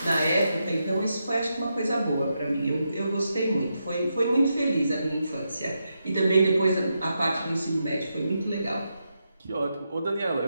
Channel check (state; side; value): inverted; both; correlation -0.85